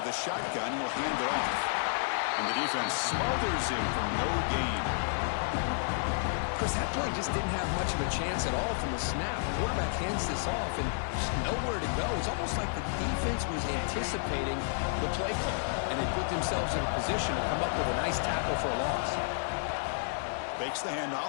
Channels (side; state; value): right; silent; 57 dB below the other